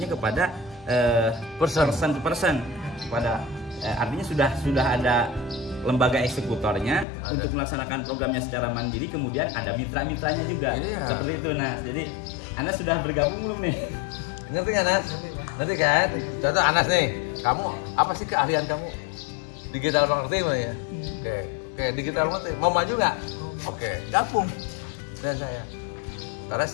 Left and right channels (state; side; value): drops out; right; at 7.1 s